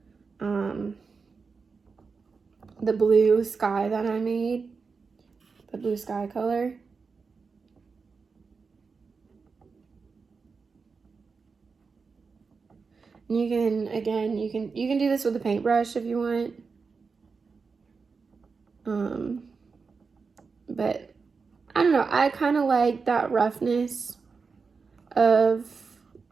the blue sky that I made, the blue sky color. And you can, again, you can do this with a paintbrush if you want. But I don't know, I kind of like that roughness of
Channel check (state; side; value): quieter; left; 4.9 dB